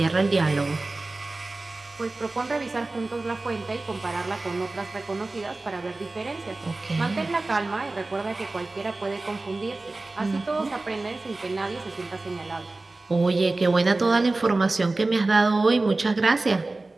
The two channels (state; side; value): quieter; left; 3.2 dB